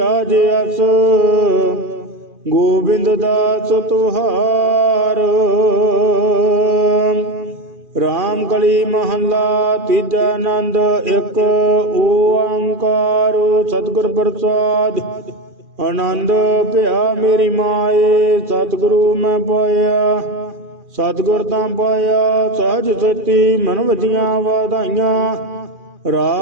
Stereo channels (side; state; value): left; late; 2.5 ms